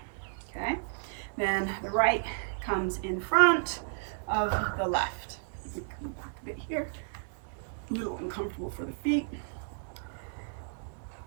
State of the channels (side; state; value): left; silent; 56 dB below the other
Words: Okay. Then the right comes in front of the left. You can back a bit here. A little uncomfortable for the feet.